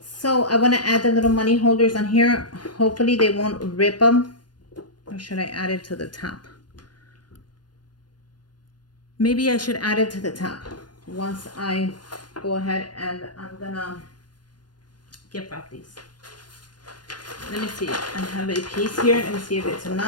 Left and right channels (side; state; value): right; late; 0.70 ms